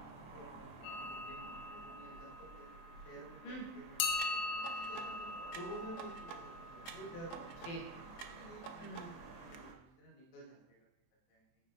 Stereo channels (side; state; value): right; late; 23 ms